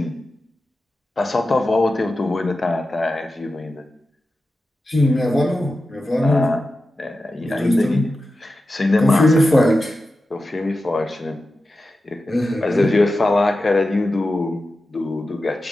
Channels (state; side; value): normal; both; correlation 0.92